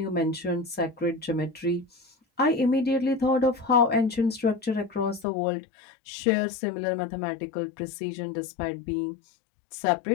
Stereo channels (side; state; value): right; drops out; at 5.2 s